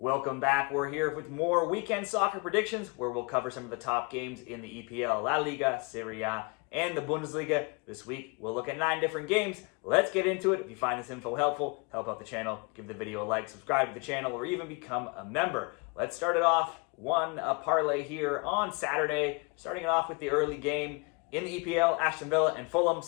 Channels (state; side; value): quieter; right; 31.2 dB